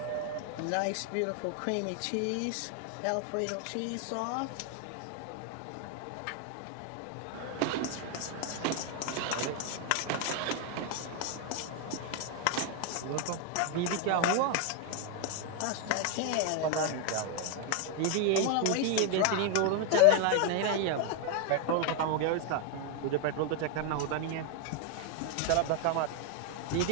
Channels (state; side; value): different; both; correlation 0.01